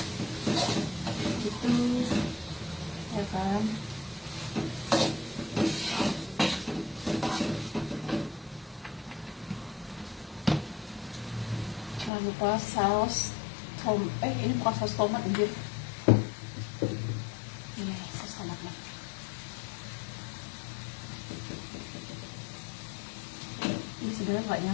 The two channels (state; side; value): drops out; right; at 12.1 s